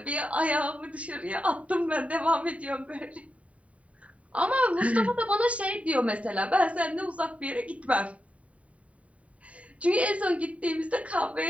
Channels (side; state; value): left; late; 0.066 ms